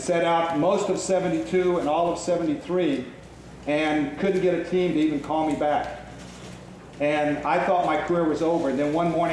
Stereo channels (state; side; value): identical; both; correlation 1.00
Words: set out most of 72 and all of 73 and couldn't get a team to even call me back. And I thought my career was over. And then one